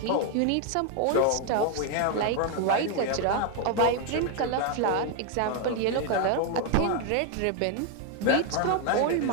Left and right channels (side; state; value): both; different; correlation 0.01